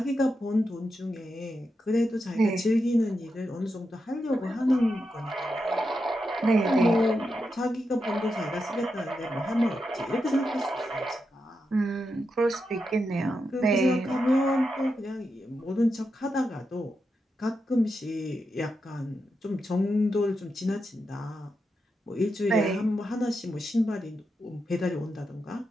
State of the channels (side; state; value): both; normal; correlation 0.86